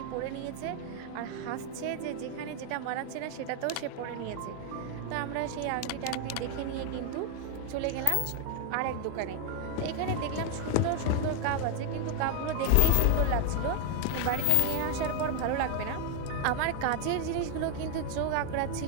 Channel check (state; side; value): different; both; correlation 0.00